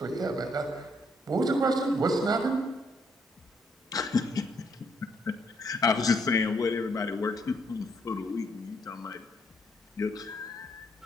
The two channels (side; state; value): both; normal; correlation 0.72